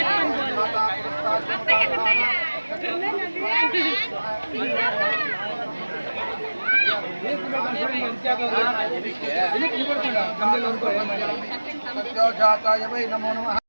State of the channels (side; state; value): both; inverted; correlation -1.00